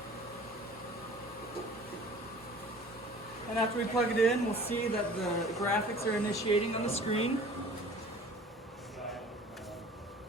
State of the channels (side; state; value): both; normal; correlation 0.46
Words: And after we plug it in, we'll see that the graphics are initiating on the screen.